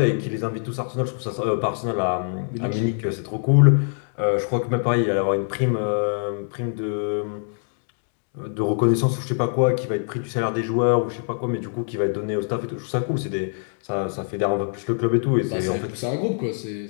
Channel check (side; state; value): right; silent; digital silence